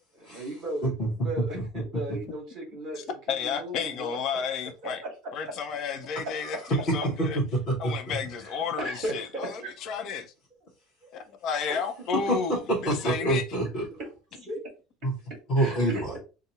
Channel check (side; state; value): both; normal; correlation 0.36